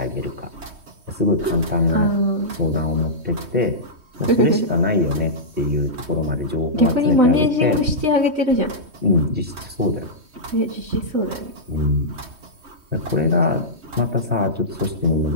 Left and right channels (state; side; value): late; left; 3.2 ms